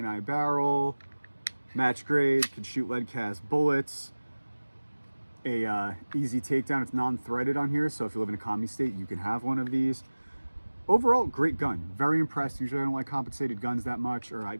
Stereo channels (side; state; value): both; inverted; correlation -1.00